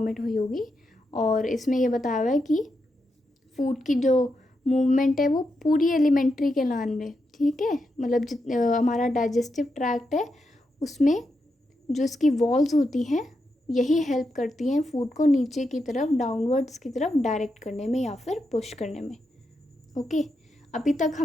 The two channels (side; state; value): both; normal; correlation 0.85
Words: हुई होगी। और इसमें ये बताया हुआ है कि फूड की जो मूवमेंट है वो पूरी एलिमेंट्री कैनाल में, ठीक है, मतलब हमारा डाइजेस्टिव ट्रैक्ट है उसमें जो इसकी वॉल्स होती हैं यही हेल्प करती हैं फूड को नीचे की तरफ, डाउनवर्ड्स की तरफ डायरेक्ट करने में या फिर पुश करने में। ओके, अभी तक